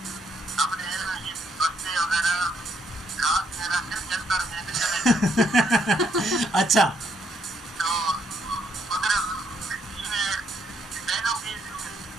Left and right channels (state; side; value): normal; both; correlation 0.73